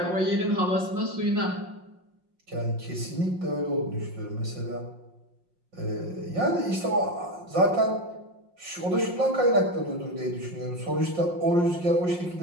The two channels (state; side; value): late; left; 5.6 ms